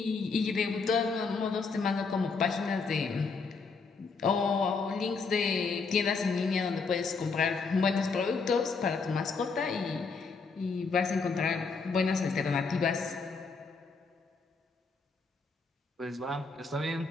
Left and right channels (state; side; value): quieter; right; 4.6 dB